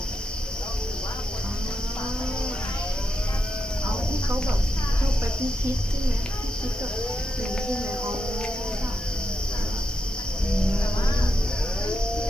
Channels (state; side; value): normal; both; correlation 0.85